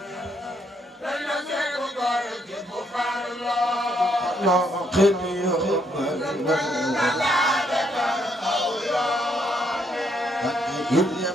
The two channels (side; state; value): both; normal; correlation 0.73